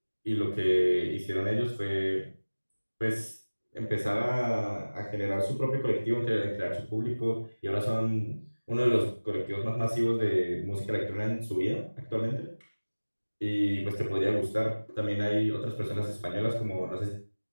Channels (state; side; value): inverted; both; correlation -1.00